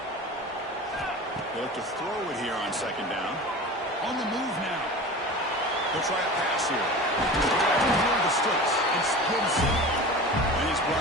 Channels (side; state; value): both; normal; correlation 0.34